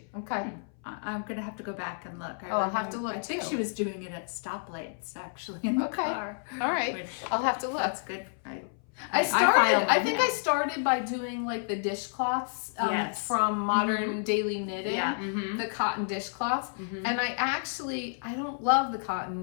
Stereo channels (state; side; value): silent; right; 57 dB below the other